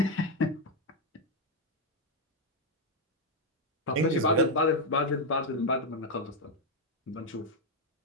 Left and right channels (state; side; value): normal; both; correlation 0.02